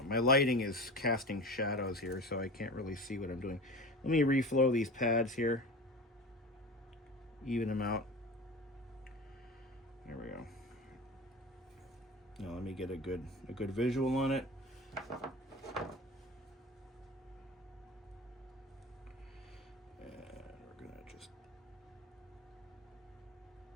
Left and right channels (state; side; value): normal; both; correlation 0.32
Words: my lighting is casting shadows here, so I can't really see what I'm doing. Let me reflow these pads here. Even them out. There we go. Now let me get a good visual on it. And we're gonna just